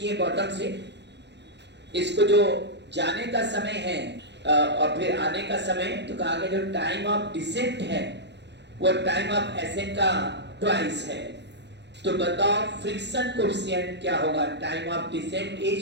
बॉटम से। इसको जो जाने का समय है और फिर आने का समय, तो कहा गया जो टाइम ऑफ डिसेंट है वो टाइम ऑफ एसेंट का ट्वाइस है। तो बताओ फ्रिक्शन कोएफिशिएंट क्या होगा? Time of descent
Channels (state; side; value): late; left; 0.50 ms